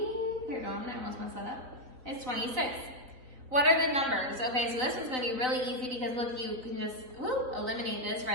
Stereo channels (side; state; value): left; late; 3.9 ms